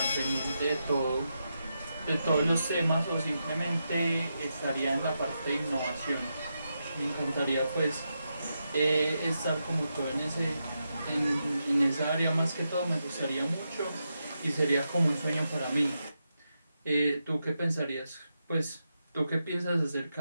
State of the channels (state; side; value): inverted; both; correlation -0.86